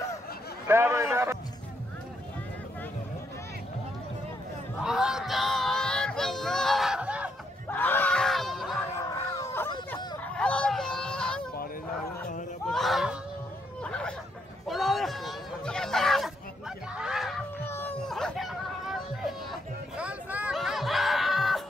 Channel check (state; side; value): normal; both; correlation 0.76